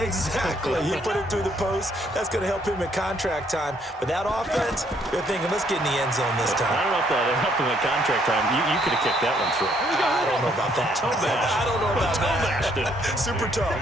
He put it through the post. That's going to help him in contract time. But that offense, they're thinking, let's get in the end zone this time. I don't know if that helped him in contract time. You could have kicked that one through. I don't know about that. I don't know about that. Super tough.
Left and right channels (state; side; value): normal; both; correlation 0.68